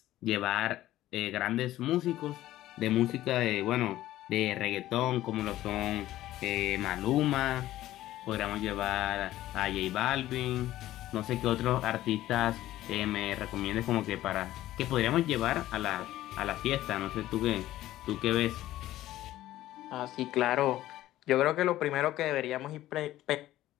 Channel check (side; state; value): right; quieter; 14.7 dB